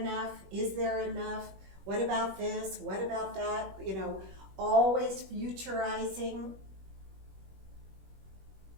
Is there enough? What about this? What about that? You know, always futurizing.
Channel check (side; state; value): left; late; 21 ms